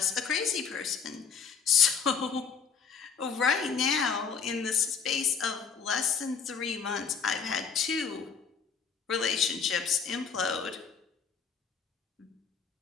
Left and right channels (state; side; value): quieter; right; 6.3 dB